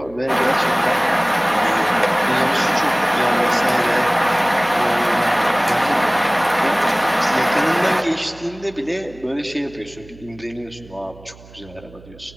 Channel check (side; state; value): right; noise; hum, 22 dB below the sound